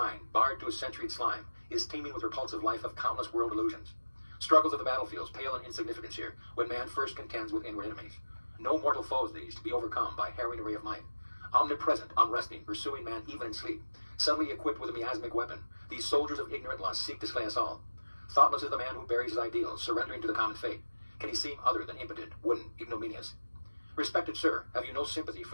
barred to a centuried slime, is teeming with repulsive life of countless world illusions. Struggles of the battlefields pale in insignificance here, when man first contends with inward enemies. No mortal foes these, to be overcome by harrowing array of might. Omnipresent, unresting, pursuing man even in sleep, suddenly equipped with a miasmic weapon, these soldiers of ignorant lust seek to slay us all. Thoughtless is the man who buries his ideals, surrendering to the common fate. Can he seem other than impotent, wooden, ignominious? Respected sir, have you no sympathy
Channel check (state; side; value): inverted; both; correlation -1.00